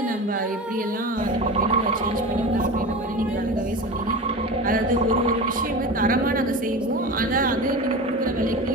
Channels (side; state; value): both; normal; correlation 0.29